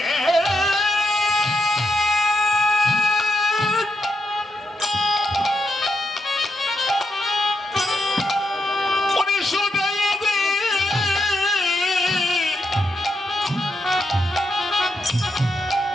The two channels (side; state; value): both; normal; correlation 0.82